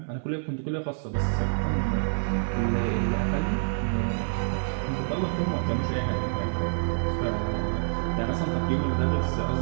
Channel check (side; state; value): left; silent; 57 dB below the other